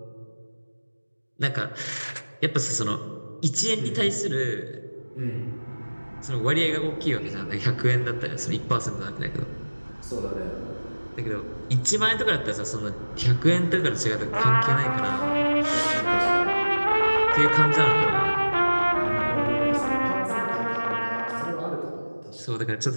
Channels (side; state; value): both; inverted; correlation -1.00